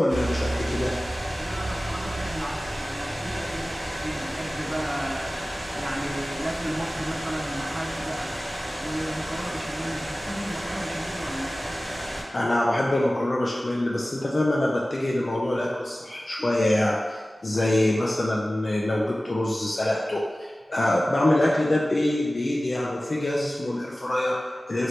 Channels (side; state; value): both; normal; correlation 0.97